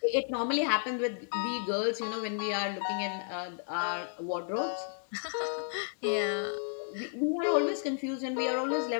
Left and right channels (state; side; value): silent; right; digital silence